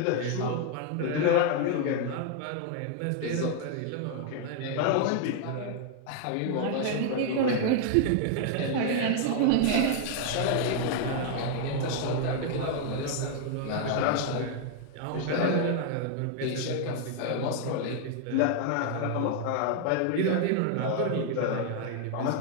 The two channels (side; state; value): both; different; correlation 0.00